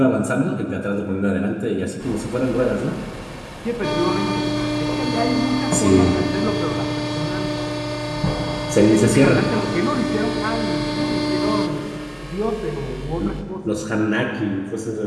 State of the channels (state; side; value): identical; both; correlation 1.00